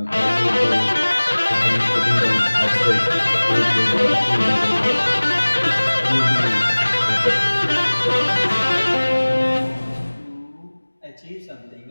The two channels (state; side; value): inverted; both; correlation -1.00